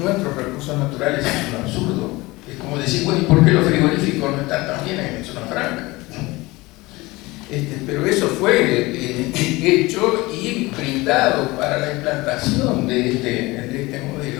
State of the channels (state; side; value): quieter; right; 21.5 dB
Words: recursos naturales es un absurdo. Es como decir, bueno, ¿y por qué los frigoríficos no están también en zona franca? Pero eso fue hecho y brindado para la implantación de este